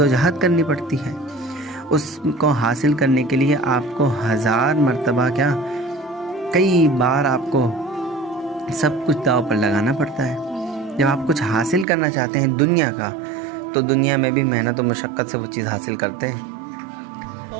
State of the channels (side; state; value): left; drops out; at 11.9 s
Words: کرنی پڑتی ہے۔ اس کو حاصل کرنے کے لیے آپ کو 1000 مرتبہ کیا، کئی بار آپ کو سب کچھ داؤ پر لگانا پڑتا ہے۔ جب آپ کچھ حاصل کرنا چاہتے ہیں دنیا کا، تو دنیا میں بھی محنت و مشقت سے وہ چیز حاصل کرتے ہیں۔